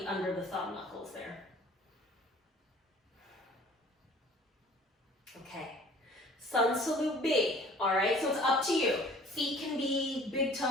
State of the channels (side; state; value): both; normal; correlation 0.50